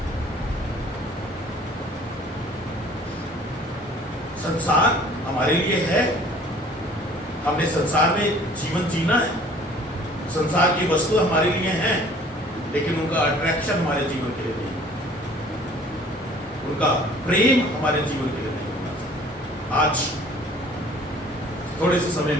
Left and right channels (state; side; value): normal; both; correlation 0.52